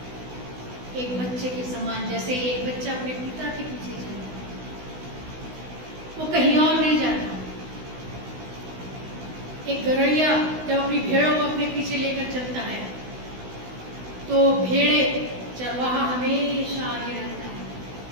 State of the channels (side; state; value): left; late; 16 ms